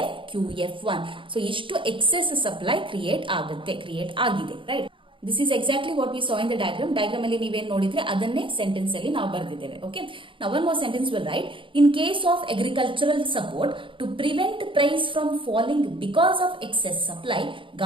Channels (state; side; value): late; left; 0.25 ms